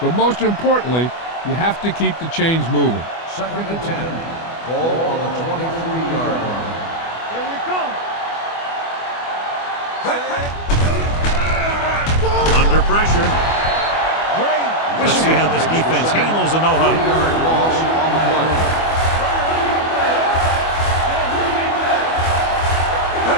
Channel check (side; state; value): right; late; 24 ms